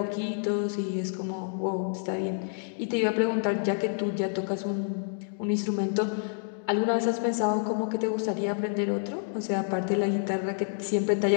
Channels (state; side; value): silent; right; digital silence